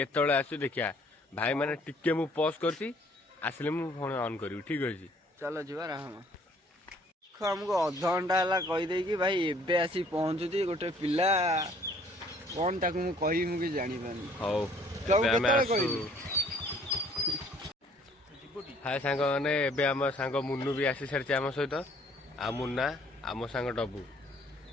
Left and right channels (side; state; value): both; normal; correlation 0.59